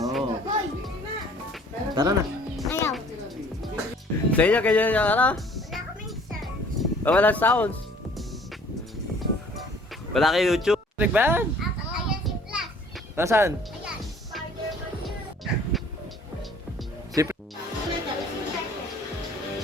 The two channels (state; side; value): normal; both; correlation 0.54